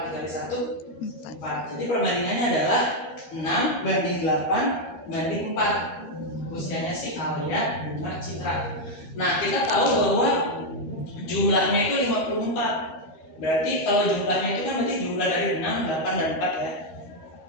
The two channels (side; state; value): right; late; 13 ms